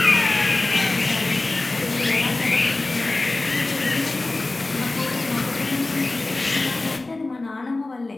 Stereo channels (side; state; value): right; quieter; 3.1 dB